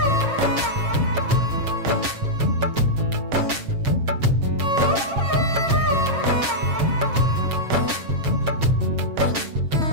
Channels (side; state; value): left; late; 7.4 ms